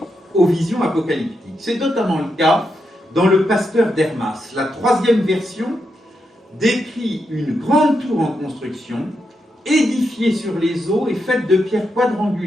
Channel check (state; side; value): normal; both; correlation 0.84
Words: aux visions apocalyptiques. C'est notamment le cas dans le Pasteur d'Hermas. La 3e version décrit une grande tour en construction, édifiée sur les eaux et faite de pierres